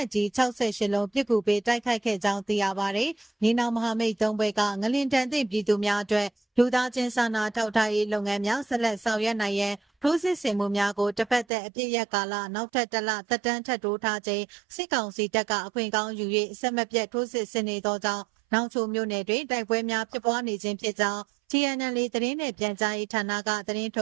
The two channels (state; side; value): drops out; left; at 11.5 s